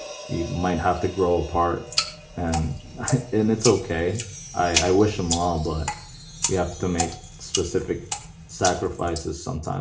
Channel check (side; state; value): both; identical; correlation 1.00